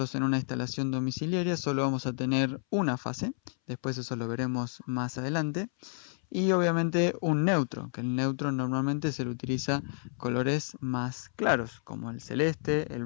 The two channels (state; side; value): silent; right; 58 dB below the other